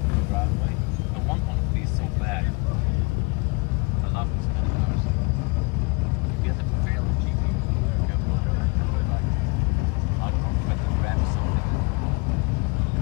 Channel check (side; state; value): right; quieter; 29.4 dB